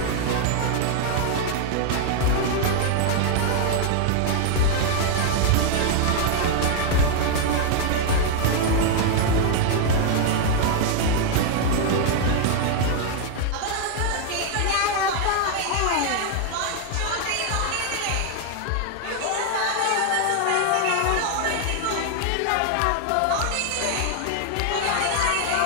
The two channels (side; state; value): both; different; correlation 0.00